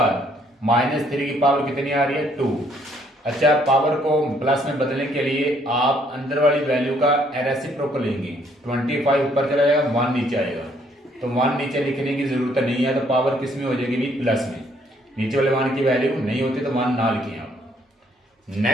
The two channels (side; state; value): both; normal; correlation 0.66